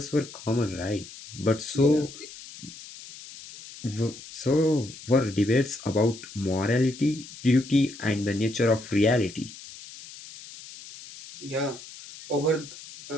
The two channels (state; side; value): noise; left; hiss, 16 dB below the sound